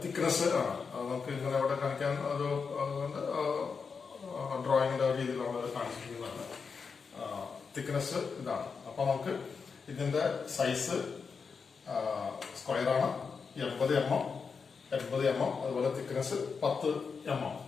തിക്നെസ് ആണ്. നമുക്ക് ഇങ്ങനെ അവിടെ കാണിക്കാൻ ഒരു ഡ്രോയിങ്ങിന്റെ രീതിയിൽ നമ്മൾ കാണിച്ചിരിക്കുന്നതാണ്. തിക്നെസ് ഇതാണ്. അപ്പൊ നമുക്ക് ഇതിന്റെ സൈസ് സ്ക്വയർ ആണ്, 80 mm. 80 mm, അതുപോലെ തിക്നെസ് 10 mm.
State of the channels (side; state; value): right; quieter; 5.4 dB